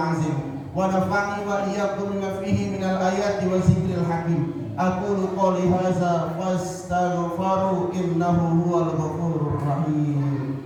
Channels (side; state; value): both; identical; correlation 1.00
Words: wa nafa'ani wa iyyakum bima fihi minal ayati wa zikril hakim. Aqulu qouli hadza fastaghfiru innahu huwal ghafurur rahim.